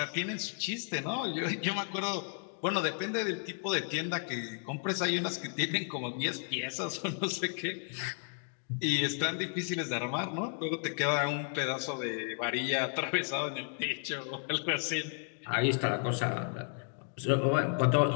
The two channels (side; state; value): right; silent; 56 dB below the other